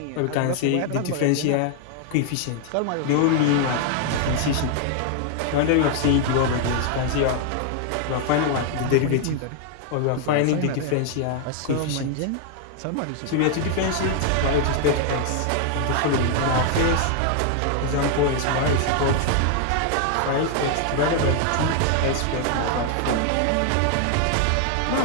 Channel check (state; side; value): different; both; correlation 0.00